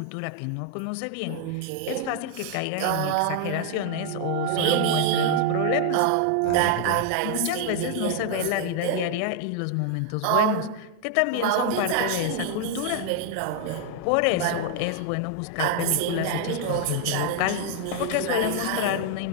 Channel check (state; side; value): different; both; correlation 0.00